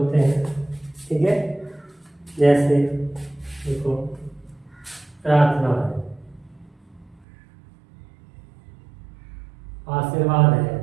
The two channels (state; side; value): drops out; left; at 7.2 s